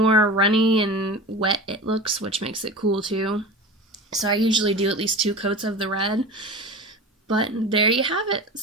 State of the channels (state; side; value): normal; both; correlation 0.32